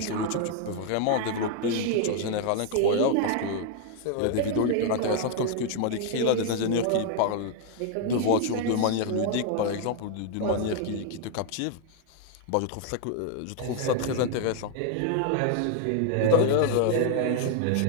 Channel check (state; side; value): different; both; correlation 0.00